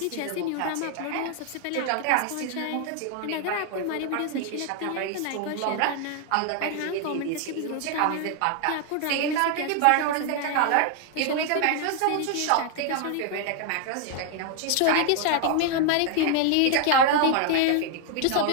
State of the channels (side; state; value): both; different; correlation 0.00